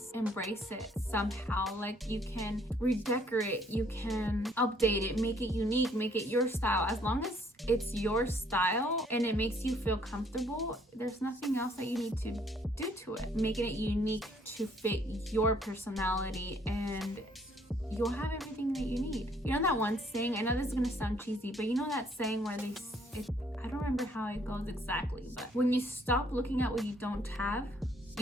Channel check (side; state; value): both; normal; correlation 0.64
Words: embrace it somehow. Like, you can redecorate, you can update it, make it unique, make it your style. As long as it's your style and it makes you feel comfortable, there's nothing else that you need to do to it. Making it unique to fit your personality, and you'll have everything that you need. You know that one saying, I know this is gonna sound cheesy, but you know that saying where I don't remember how it goes exactly, but when you stop looking at what you don't have,